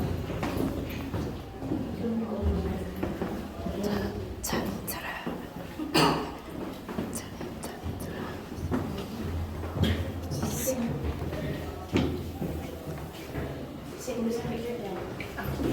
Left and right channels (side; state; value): both; identical; correlation 1.00